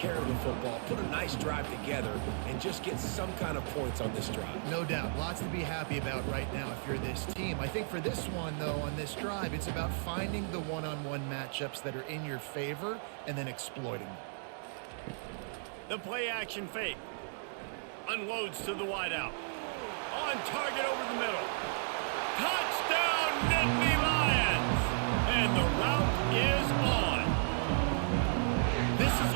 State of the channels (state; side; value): silent; left; digital silence